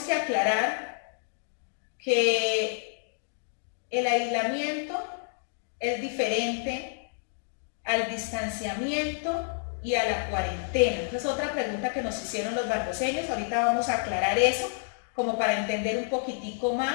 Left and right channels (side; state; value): right; silent; digital silence